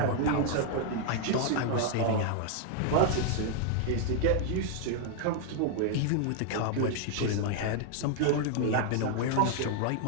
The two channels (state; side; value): different; both; correlation 0.00